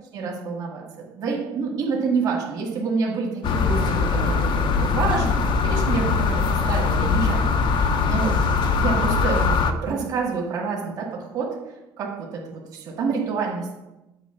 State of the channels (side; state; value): both; normal; correlation 0.41